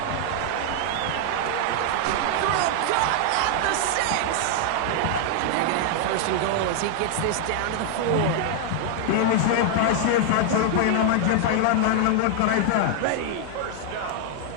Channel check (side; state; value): both; different; correlation 0.00